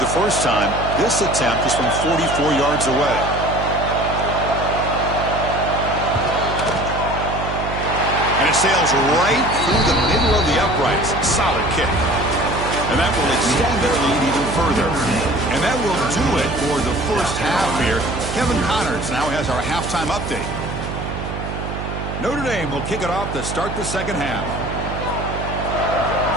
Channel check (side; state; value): right; noise; hum, 6 dB below the sound